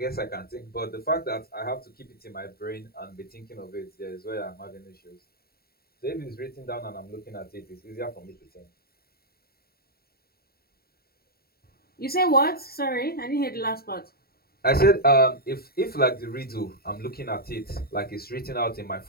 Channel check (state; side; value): late; right; 0.45 ms